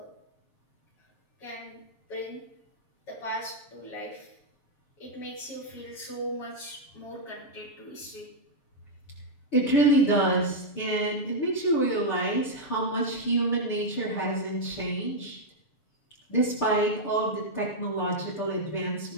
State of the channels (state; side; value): late; right; 7.2 ms